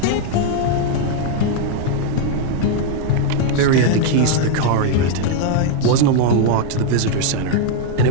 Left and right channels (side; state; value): both; different; correlation 0.00